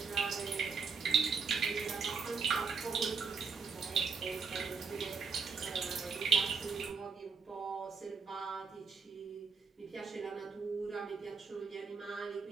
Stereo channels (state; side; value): quieter; left; 5.3 dB